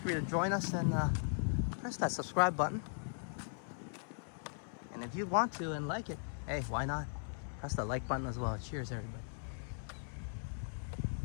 to join us and press that subscribe button. And if you want to and like it, hey, why not? Press the like button as well. Cheers, everybody.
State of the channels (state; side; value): silent; right; 52 dB below the other